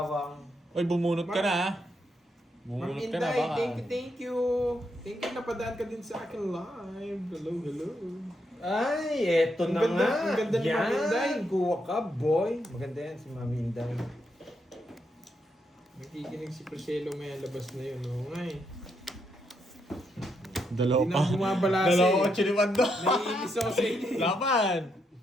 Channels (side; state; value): both; normal; correlation 0.79